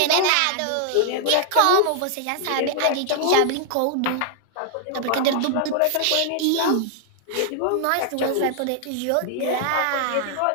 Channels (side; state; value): both; different; correlation -0.01